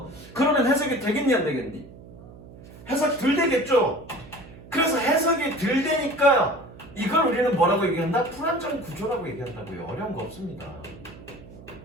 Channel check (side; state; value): right; noise; hum, 18 dB below the sound